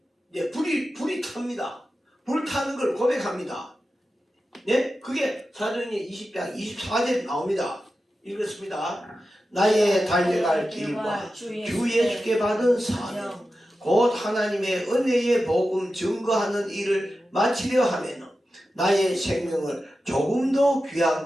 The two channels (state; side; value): normal; both; correlation 0.92